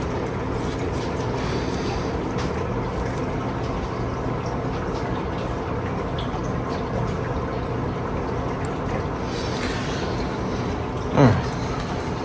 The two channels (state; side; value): identical; both; correlation 1.00